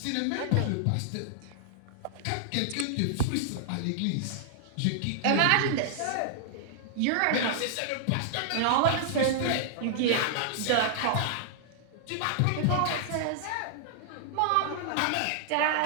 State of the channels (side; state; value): both; different; correlation -0.01